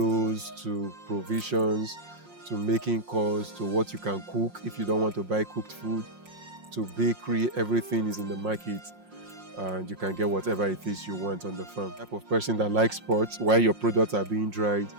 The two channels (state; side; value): late; left; 5.6 ms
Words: to provisions to making calls to what you can cook if you don't want to buy cooked food, to bakery. Everything is in the market. And you can get whatever it is you want on the farm. Type of person that likes sports, while your products are being dried,